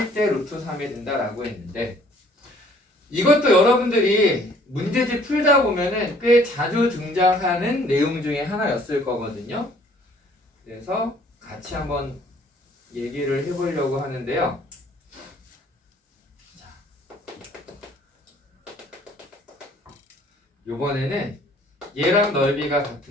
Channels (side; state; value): both; normal; correlation 0.58